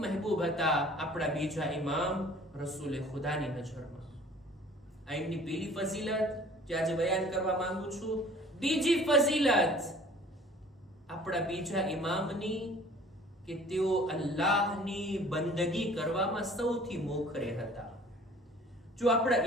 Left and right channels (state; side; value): normal; both; correlation 0.50